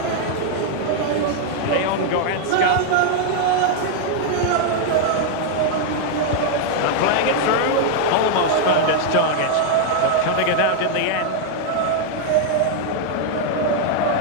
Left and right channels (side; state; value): both; different; correlation 0.00